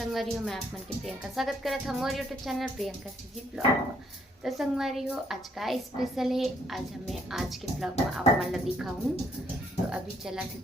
हो। मैं आप मन के प्रियंका स्वागत करत हूँ मोर YouTube channel Priyanka CG blog. तो संगवारी हो, आज का स्पेशल है। आज हमें आज के ब्लॉग में आप मन ला दिखाऊँ। तो अभी चला थी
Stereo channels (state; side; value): normal; both; correlation 0.69